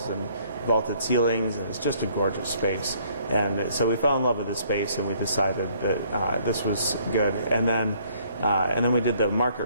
and vaulted ceilings, and it's just a gorgeous space. And so we fell in love with the space, and we decided that this was good. And then we did the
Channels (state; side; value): inverted; both; correlation -0.63